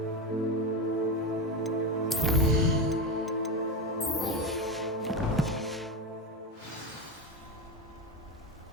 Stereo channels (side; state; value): both; normal; correlation 0.16